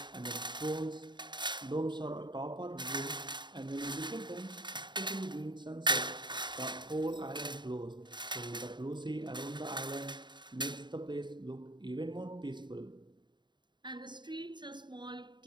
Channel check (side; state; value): left; late; 0.22 ms